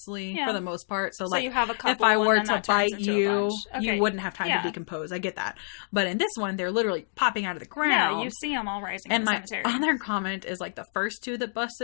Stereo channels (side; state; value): right; silent; digital silence